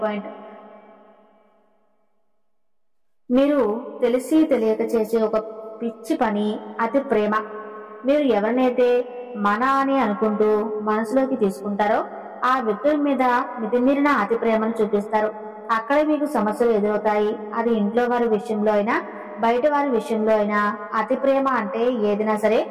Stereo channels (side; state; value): both; identical; correlation 1.00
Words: పాయింట్. మీరు తెలిసి తెలియక చేసే ఒక పిచ్చి పని అతి ప్రేమ. మీరు ఎవరినైతే మన అని అనుకుంటూ మనసులోకి తీసుకుంటారో ఆ వ్యక్తుల మీద మితిమీరిన అతి ప్రేమను చూపిస్తారు. అక్కడే మీకు సమస్యలు ఎదురవుతాయి. అది ఇంట్లో వారి విషయంలో అయినా బయట వారి విషయంలో అయినా. అతి ప్రేమ అంటే ఏదైనా సరే